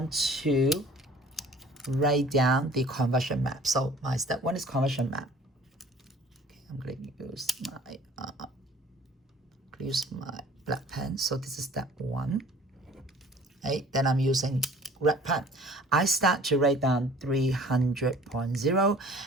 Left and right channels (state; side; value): normal; both; correlation 0.49